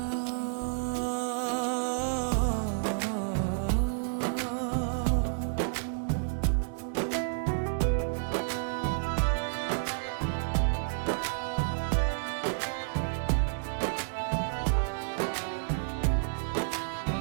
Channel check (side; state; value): left; silent; digital silence